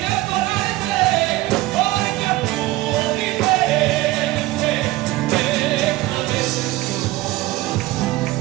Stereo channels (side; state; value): left; quieter; 18.0 dB